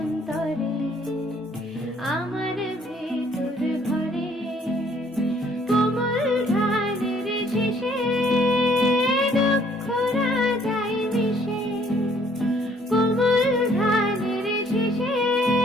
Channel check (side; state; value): both; normal; correlation 0.62